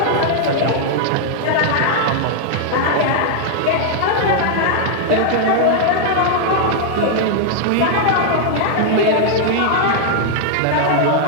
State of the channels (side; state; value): both; different; correlation -0.01